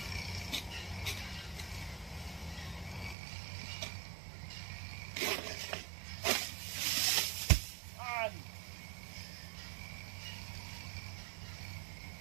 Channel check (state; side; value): drops out; left; at 3.2 s